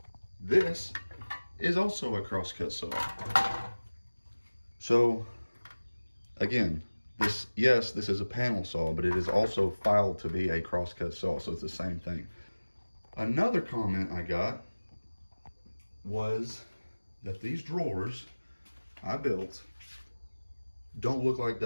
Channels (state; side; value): inverted; both; correlation -1.00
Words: This is also a crosscut saw. So again, this is a panel saw, but it is also filed to be a crosscut saw, so it's the same thing. Another comment I got was that these drawers I built don't look like